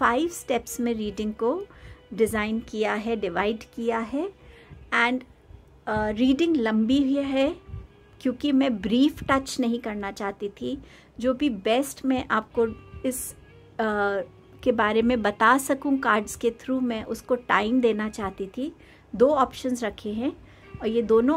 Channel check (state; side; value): identical; both; correlation 1.00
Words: स्टेप्स में रीडिंग को डिज़ाइन किया है, डिवाइड किया है। एंड रीडिंग लंबी भी है क्योंकि मैं ब्रीफ टच नहीं करना चाहती थी। जो भी बेस्ट मैं आपको इस के बारे में बता सकूं कार्ड्स के थ्रू, मैं उसको टाइम देना चाहती थी। 2 ऑप्शंस रखे हैं और ये दोनों